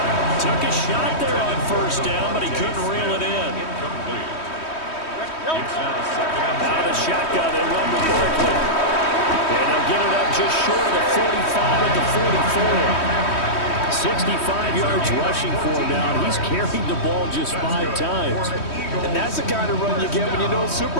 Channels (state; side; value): late; right; 3.1 ms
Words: Took a shot there on 1st down, but he couldn't reel it in. Out of the shotgun, they run with Barkley. And they'll get it up just short of the 45 at the 44. 65 yards rushing for him now, and he's carried the ball just 5 times. And that's the kind of run you get when you know